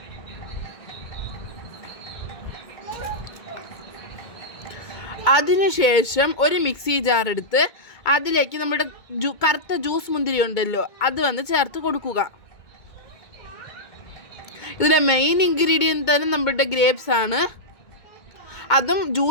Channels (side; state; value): right; late; 2.2 ms